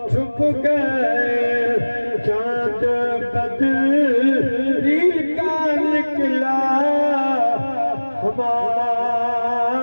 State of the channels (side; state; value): both; inverted; correlation -1.00